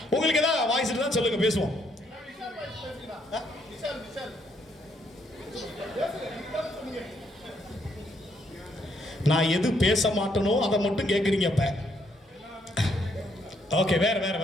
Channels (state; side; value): normal; both; correlation 0.72